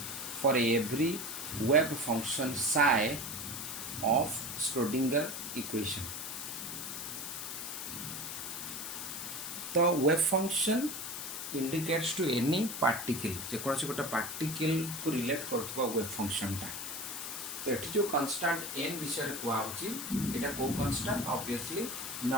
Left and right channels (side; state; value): left; noise; hiss, 6 dB below the sound